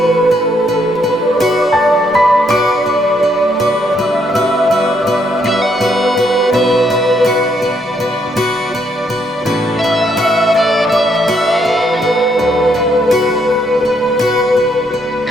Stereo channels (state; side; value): normal; both; correlation 0.73